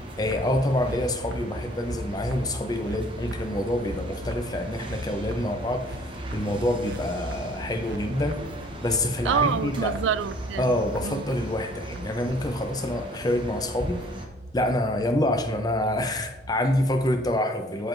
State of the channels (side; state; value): both; normal; correlation 0.56